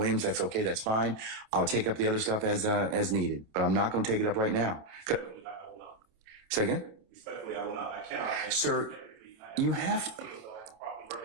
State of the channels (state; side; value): late; left; 28 ms